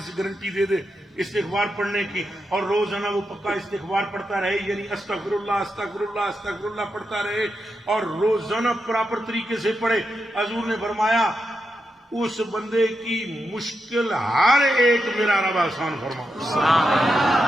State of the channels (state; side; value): normal; both; correlation 0.86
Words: گارنٹی دے دے استغفار پڑھنے کی اور روزانہ وہ پکا استغفار پڑھتا رہے، یعنی استغفر اللہ استغفر اللہ استغفر اللہ پڑھتا رہے اور روزانہ پراپر طریقے سے پڑھے، حضور نے فرمایا اس بندے کی مشکل ہر ایک میرا رب آسان فرما.